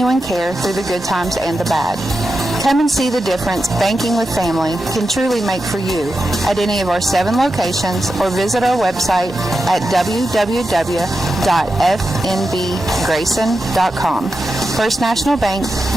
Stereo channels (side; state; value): both; normal; correlation 0.90